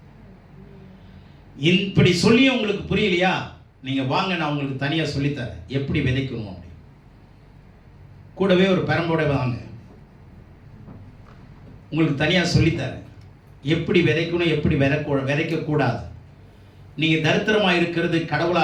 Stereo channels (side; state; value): both; identical; correlation 1.00